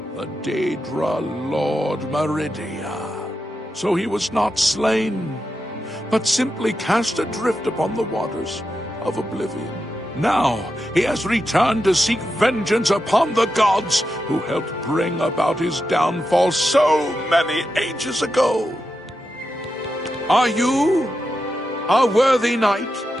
the Daedra Lord Meridia. So he was not slain, but simply cast adrift upon the waters of Oblivion. Now he has returned to seek vengeance upon the gods who helped bring about his downfall so many ages ago. Are you a worthy knight?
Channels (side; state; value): both; normal; correlation 0.88